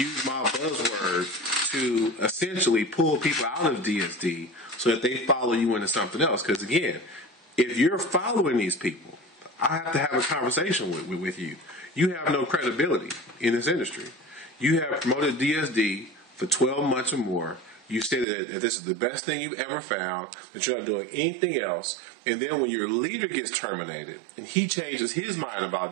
my buzzword to essentially pull people out of DSD so that they follow you into something else. Because again, if you're following these people, I have to have a conversation with you. You have no credibility in this industry. You have promoted DSD for 12 months or more. You say that this is the best thing you've ever found, that you're not doing anything else. And then when your leader gets terminated and he changes his mind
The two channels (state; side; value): drops out; left; at 18.2 s